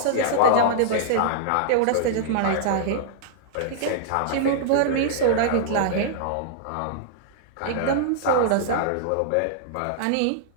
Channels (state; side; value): different; both; correlation -0.01